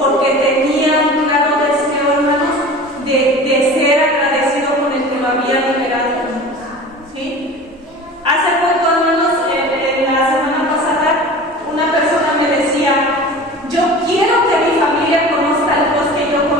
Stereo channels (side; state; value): both; normal; correlation 0.37